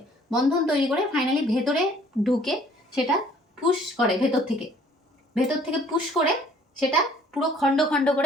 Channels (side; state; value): both; normal; correlation 0.57